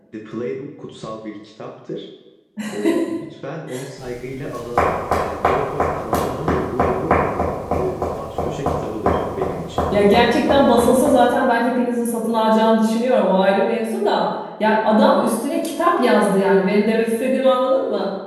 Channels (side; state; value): both; identical; correlation 1.00